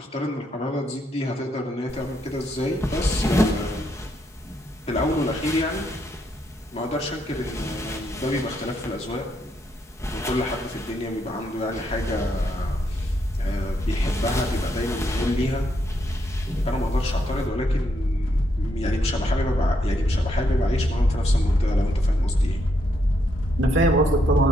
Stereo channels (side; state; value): both; normal; correlation 0.77